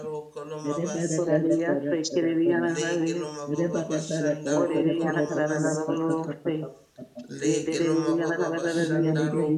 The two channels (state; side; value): identical; both; correlation 1.00